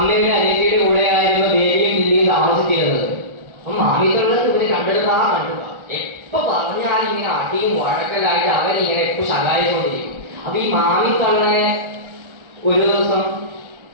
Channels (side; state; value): left; late; 1.4 ms